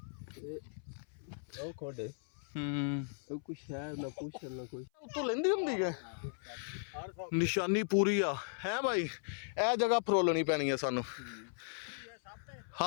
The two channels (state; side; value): silent; right; 53 dB below the other